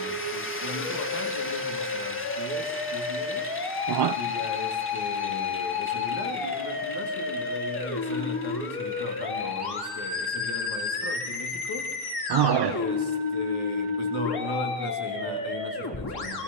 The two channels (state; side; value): normal; both; correlation -0.02